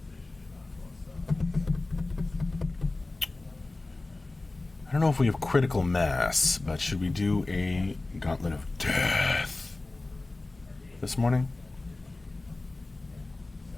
don't know if we have critical mass, but should we do a gauntlet of death this morning?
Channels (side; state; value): right; quieter; 3.1 dB